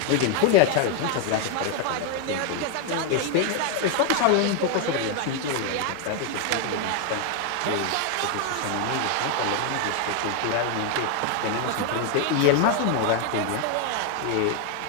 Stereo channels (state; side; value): different; both; correlation 0.01